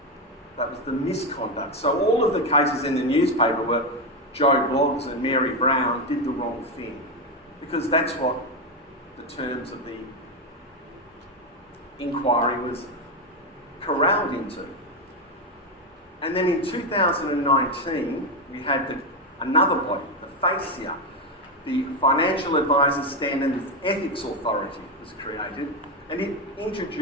That was the misconduct. So all of the cases in the newspaper were Joe Bloggs and Mary Brown did the wrong thing, because that's what the terms of the inquiry was corralled into. And then in 2019, we had another body, the FASIA, the Financial Advisors Standards Ethics Authority was created, and it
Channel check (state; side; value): normal; both; correlation 0.10